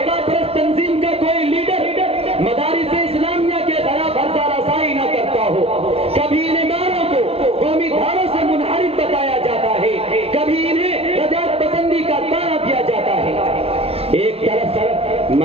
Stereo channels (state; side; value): late; left; 0.28 ms